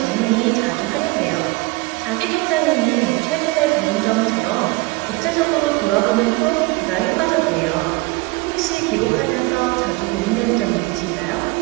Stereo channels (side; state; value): left; quieter; 22.9 dB